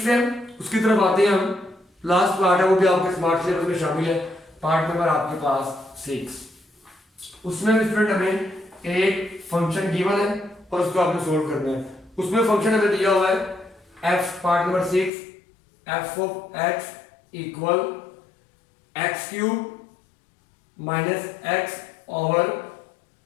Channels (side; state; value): right; drops out; at 15.1 s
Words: है, उसकी तरफ आते हैं हम। लास्ट पार्ट है, वो भी आपके स्मार्ट सिलेबस में शामिल है, पार्ट नंबर आपके पास 6। उसमें स्टूडेंट हमें एक फंक्शन गिवन है और उसको आपने सोल्व करना है। उसमें फंक्शन हमें दिया हुआ है f, part number 6, f of x equal x³ minus x over